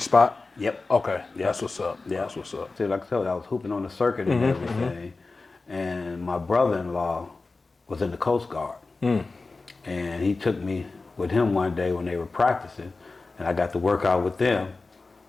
spot? Yep. Okay. Yep. That's what's up. Yep. That's what's up. See, like I told you, I was hooping on the circuit and everything. And my brother-in-law was in the Coast Guard. And he took me with him one day when they were practicing, and I got to work out with them,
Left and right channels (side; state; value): right; quieter; 3.7 dB